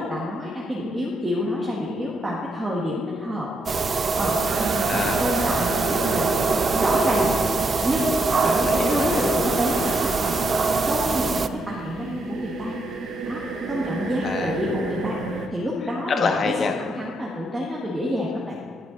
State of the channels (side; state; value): both; normal; correlation 0.79